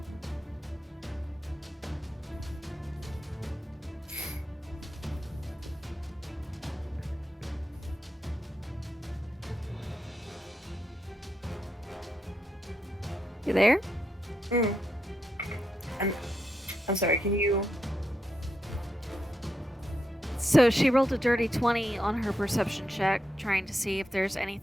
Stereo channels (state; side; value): normal; both; correlation 0.83